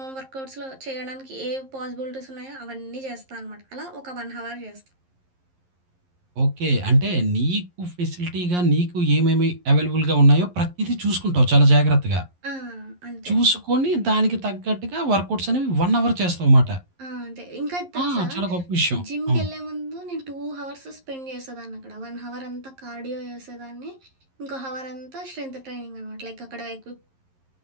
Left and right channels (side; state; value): left; late; 11 ms